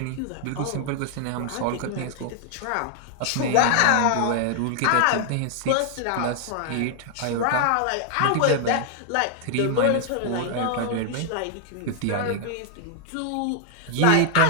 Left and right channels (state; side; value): different; both; correlation 0.00